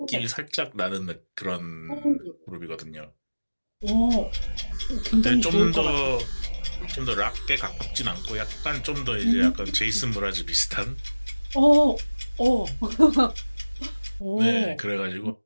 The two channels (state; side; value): inverted; both; correlation -1.00